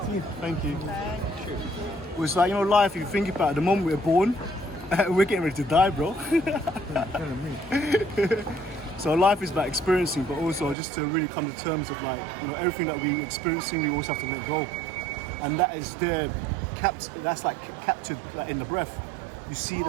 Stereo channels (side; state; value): left; drops out; at 10.8 s